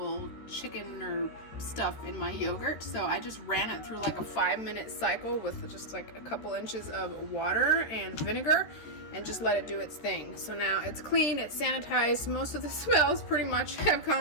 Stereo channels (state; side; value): late; right; 13 ms